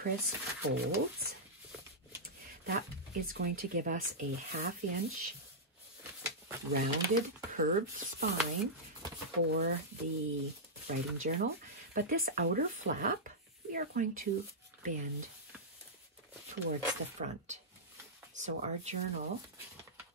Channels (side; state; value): both; normal; correlation -0.10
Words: folds. That is going to give us a 1/2 inch rounded curved spine for the writing journal, but this outer flap we are going to bend towards the front. So our journal